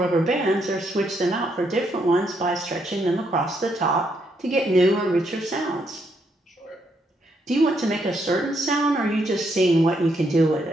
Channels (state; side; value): normal; both; correlation 0.76